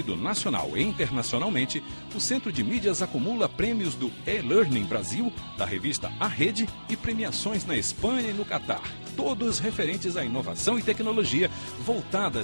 nacional e internacionalmente, o Centro de Mídias acumula prêmios do E-Learning Brasil, da revista A Rede, e premiações na Espanha e no Catar, todos referentes à inovação e tecnologia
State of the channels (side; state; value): both; inverted; correlation -1.00